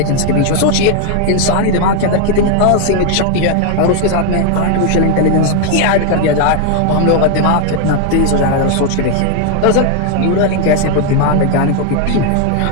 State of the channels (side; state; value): both; different; correlation 0.00